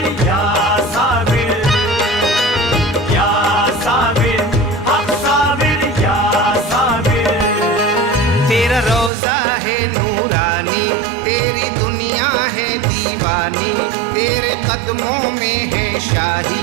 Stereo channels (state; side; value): drops out; left; at 9.1 s